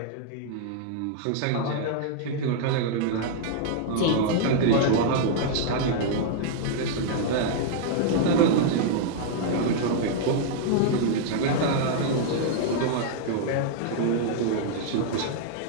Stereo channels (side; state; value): both; different; correlation -0.01